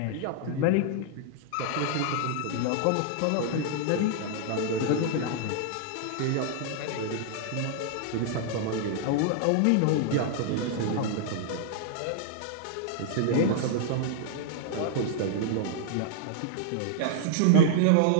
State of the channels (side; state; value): both; different; correlation 0.00